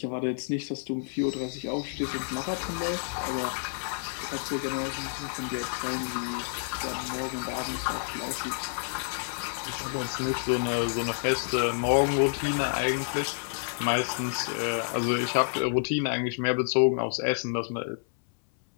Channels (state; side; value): silent; right; 58 dB below the other